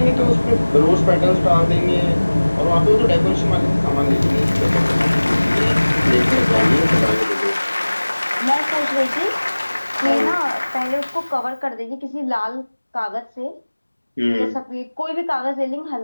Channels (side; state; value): both; inverted; correlation -1.00